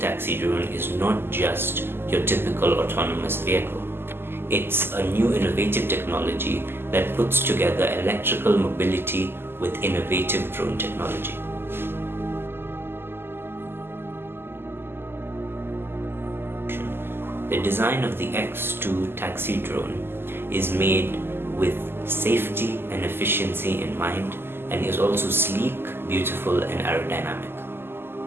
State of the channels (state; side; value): late; left; 0.11 ms